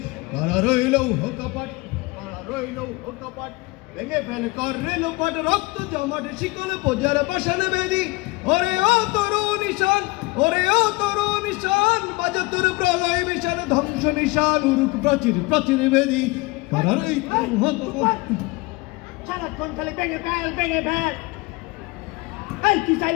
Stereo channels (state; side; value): quieter; right; 23.5 dB